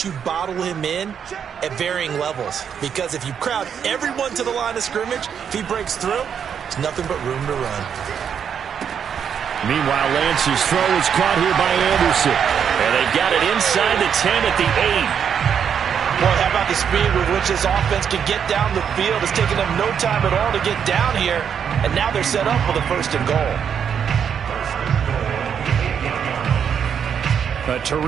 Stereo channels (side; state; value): left; quieter; 7.8 dB